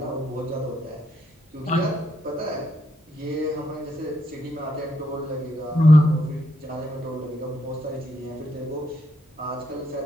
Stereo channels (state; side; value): normal; both; correlation 0.77